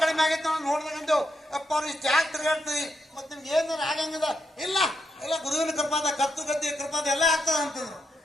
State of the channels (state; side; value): normal; both; correlation 0.82